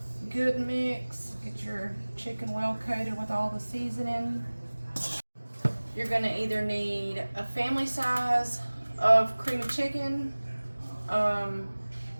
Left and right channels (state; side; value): inverted; both; correlation -1.00